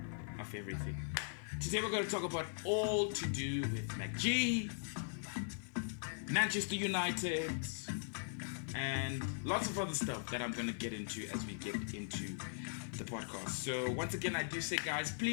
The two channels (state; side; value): silent; right; 51 dB below the other